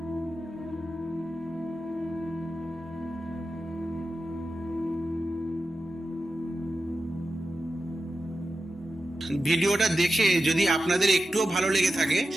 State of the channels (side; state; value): both; normal; correlation 0.91